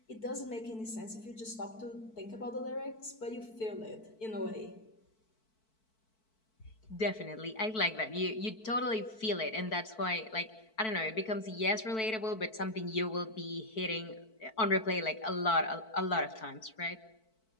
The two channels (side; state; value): right; late; 4.5 ms